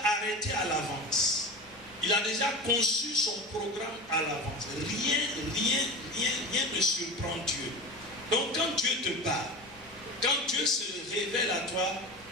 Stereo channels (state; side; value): normal; both; correlation 0.29